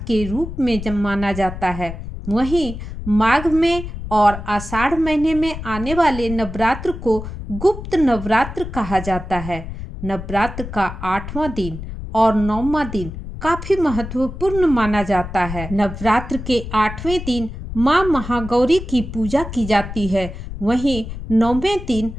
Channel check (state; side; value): noise; left; rumble, 9 dB below the sound